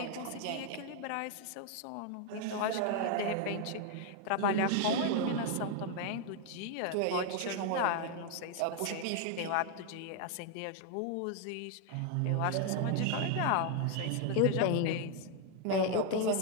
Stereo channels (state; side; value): different; both; correlation 0.01